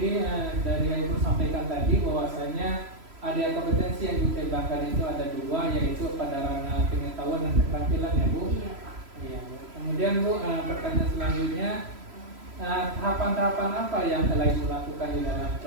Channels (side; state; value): left; late; 3.0 ms